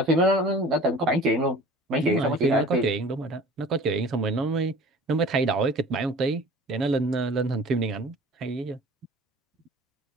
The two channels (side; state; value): both; normal; correlation 0.44